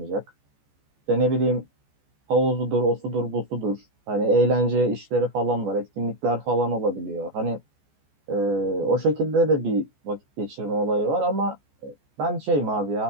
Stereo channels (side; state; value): left; late; 14 ms